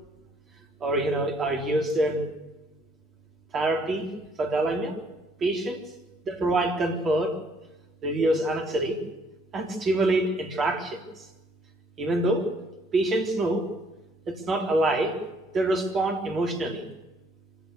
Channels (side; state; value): both; normal; correlation 0.64